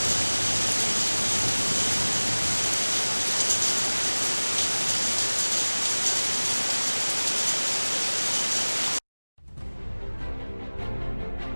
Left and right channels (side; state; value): both; inverted; correlation -1.00